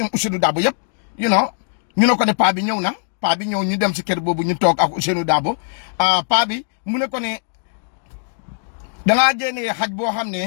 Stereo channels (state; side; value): silent; right; digital silence